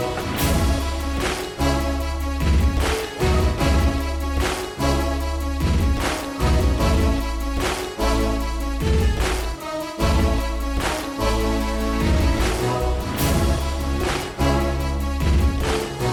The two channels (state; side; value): identical; both; correlation 1.00